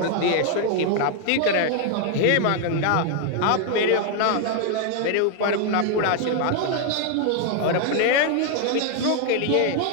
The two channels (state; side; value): different; both; correlation 0.00